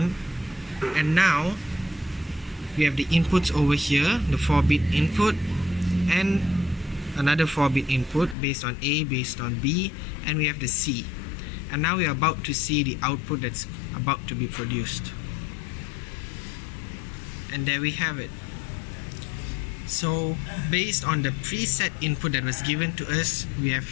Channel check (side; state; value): right; drops out; at 8.3 s